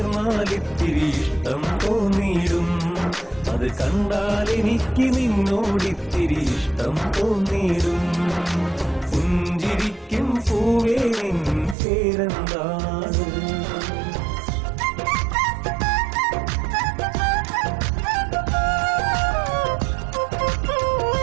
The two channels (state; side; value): drops out; left; at 11.8 s